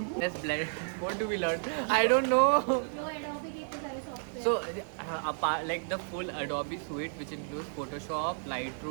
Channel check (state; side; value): silent; left; digital silence